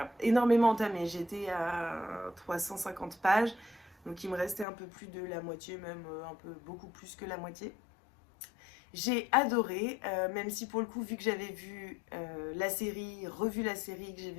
énormément entamé. J'étais à 350 pages, donc il me restait un peu plus de la moitié, même un peu beaucoup plus que la moitié. J'ai adoré, même si pour le coup, vu que j'avais vu la série, revu la série, que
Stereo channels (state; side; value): drops out; right; at 4.7 s